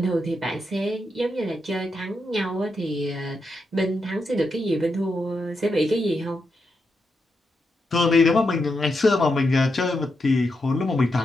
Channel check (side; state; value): both; normal; correlation 0.84